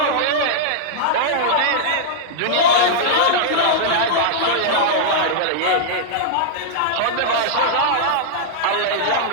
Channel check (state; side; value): different; both; correlation -0.01